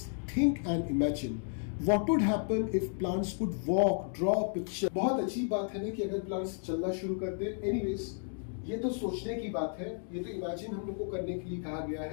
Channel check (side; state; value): right; silent; 56 dB below the other